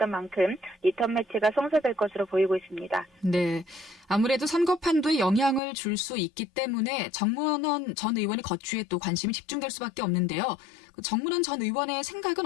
만큼 리턴 매치가 성사될 것으로 보이고 있습니다. 네, 아무래도 선거 판도에 영향을 줄 수 있기 때문에 정문원 전 의원의 거취에 또 관심이 집중될 수밖에 없는데요. 정문원 전 의원의 생각은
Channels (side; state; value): right; drops out; at 5.6 s